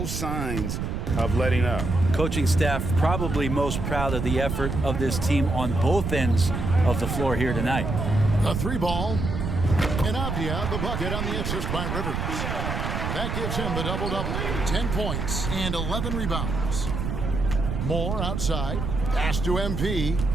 signs of letting up. Coaching staff probably most proud of the effort of this team on both ends of the floor here tonight. The 3 ball. And Avdia the bucket on the assist by Rivers. That gives him the double-double. 10 points and 11 rebounds. Moore outside. Pass to MP.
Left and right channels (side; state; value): right; noise; rumble, 3 dB below the sound